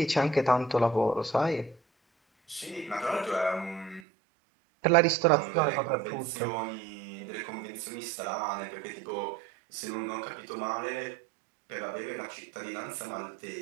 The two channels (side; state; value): left; drops out; at 4.0 s